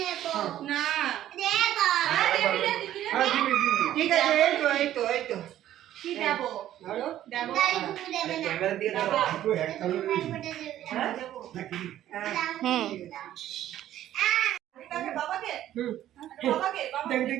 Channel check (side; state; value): left; quieter; 12.5 dB